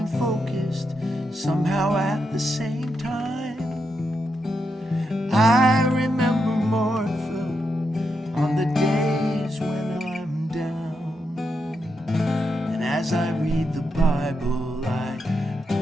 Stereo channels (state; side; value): normal; both; correlation 0.83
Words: focused, somehow at the same time. I remember Martha on the days when I'm down, and as I read the Bible, I